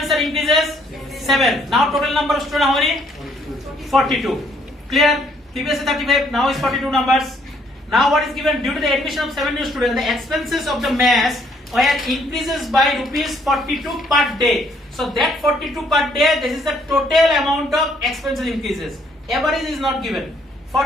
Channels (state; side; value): normal; both; correlation 0.66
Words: are increases? 7. Now total number of students how many? 42. Clear? Previously 35, now is 42 numbers. Now what is given? Due to the admission of 7 new students, the expenses of the mess were increases by rupees 42 per day. So that 42 per day, this is the total amount of expenses increases. Average is not given.